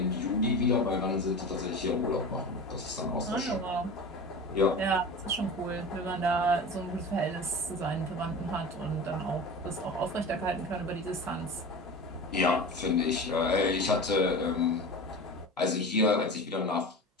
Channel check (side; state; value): both; normal; correlation 0.31